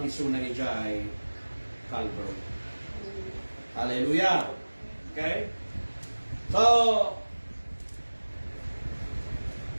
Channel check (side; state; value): both; inverted; correlation -1.00